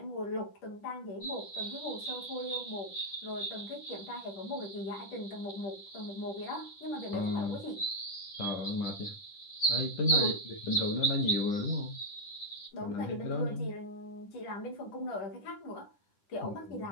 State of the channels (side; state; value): right; late; 10 ms